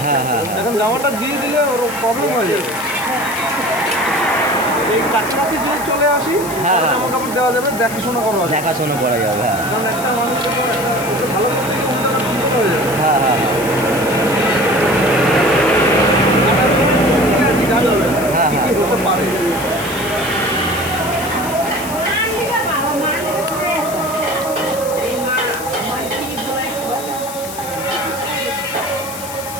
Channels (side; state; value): left; noise; hiss, 11 dB below the sound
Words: হ্যাঁ, হ্যাঁ, হ্যাঁ। এখন জামাটা দিয়ে দিলে ওর প্রবলেম হয়ে যাবে। এই কাছাকাছি যদি চলে আসি, হ্যাঁ, হ্যাঁ। জামা কাপড় দেওয়া যাবে, দেখাশোনা করা যাবে। দেখাশোনা করা যাবে। হ্যাঁ কারণ একটা মানুষ যখন ওকে ভালো করতে গিয়ে কোনটা না বিপদ হয়ে যাবে। হ্যাঁ হ্যাঁ জানা যাবে হ্যাঁ, কি হ্যাঁ। কি হতে পারে।